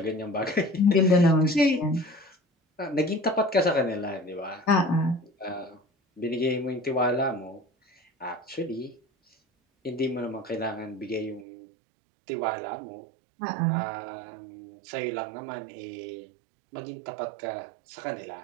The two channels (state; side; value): drops out; left; at 11.5 s